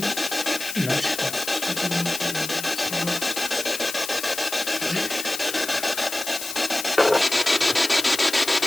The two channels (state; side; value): noise; left; hiss, 8 dB below the sound